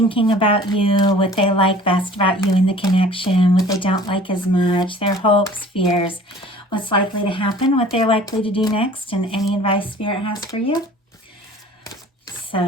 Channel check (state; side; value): normal; both; correlation 0.48